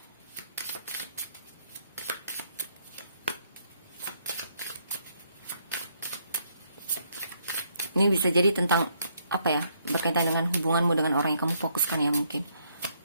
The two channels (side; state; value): both; inverted; correlation -0.72